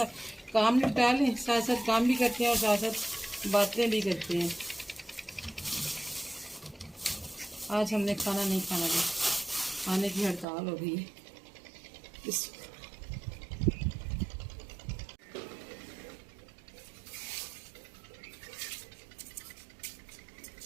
काम निपटा लें, साथ साथ काम भी करते हैं और साथ साथ बातें भी करते हैं। आज हमने खाना नहीं खाना था, खाने की हड़ताल हो गई है।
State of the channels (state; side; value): drops out; left; at 10.5 s